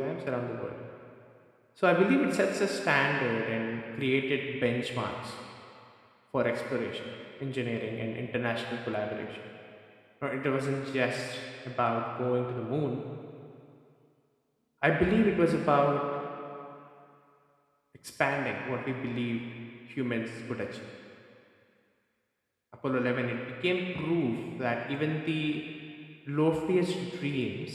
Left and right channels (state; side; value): identical; both; correlation 1.00